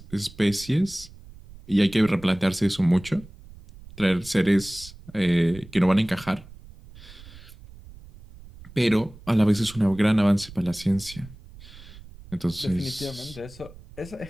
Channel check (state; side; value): noise; right; rumble, 19 dB below the sound